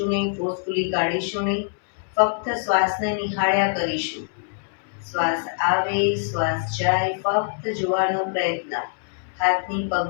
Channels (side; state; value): right; silent; digital silence